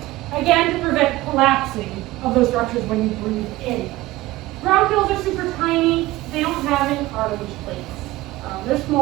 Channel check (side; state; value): left; quieter; 18.2 dB